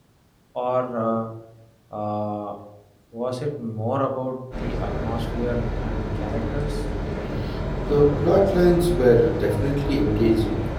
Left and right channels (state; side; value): identical; both; correlation 1.00